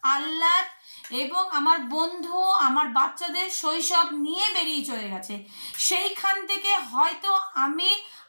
আহ্লাদ এবং আমার বন্ধু, আমার বাচ্চাদের শৈশব নিয়ে বেরিয়ে চলে গেছে, সেইখান থেকে হয়তো আমি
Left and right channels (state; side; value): inverted; both; correlation -1.00